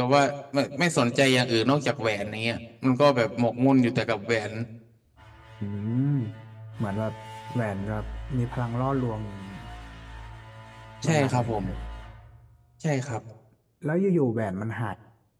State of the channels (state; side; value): identical; both; correlation 1.00